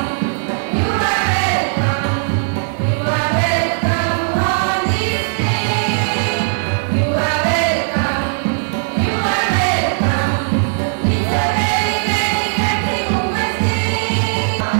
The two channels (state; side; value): silent; left; digital silence